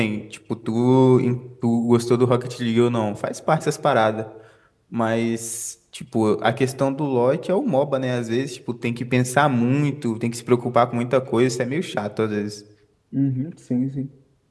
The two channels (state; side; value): identical; both; correlation 1.00